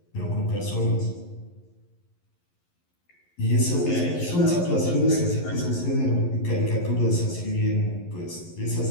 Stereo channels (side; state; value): right; late; 11 ms